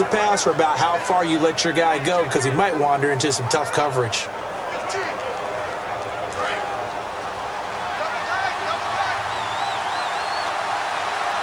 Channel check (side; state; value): both; identical; correlation 1.00